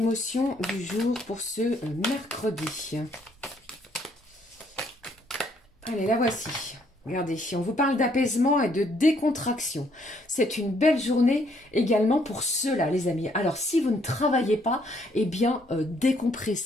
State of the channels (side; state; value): both; normal; correlation 0.68